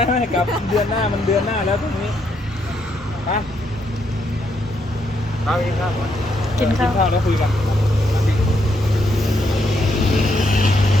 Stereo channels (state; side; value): normal; both; correlation 0.76